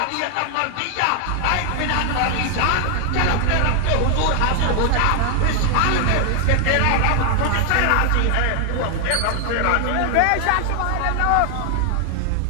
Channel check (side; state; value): both; different; correlation 0.00